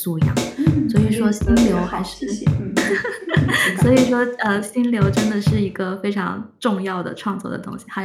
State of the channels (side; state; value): both; identical; correlation 1.00